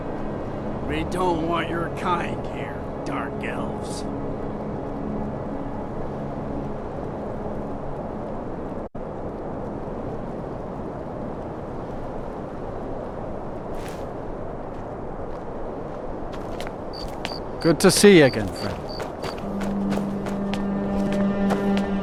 We don't want your kind here, dark elves. Good to see you again, friend.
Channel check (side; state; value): both; identical; correlation 1.00